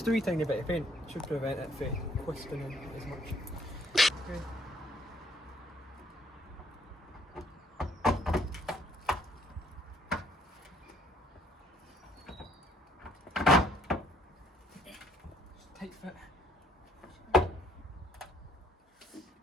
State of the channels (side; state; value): both; normal; correlation 0.63